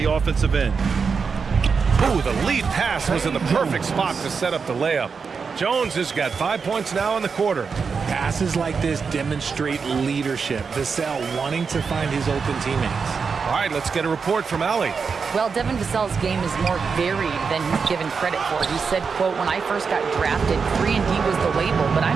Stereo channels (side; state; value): left; quieter; 5.5 dB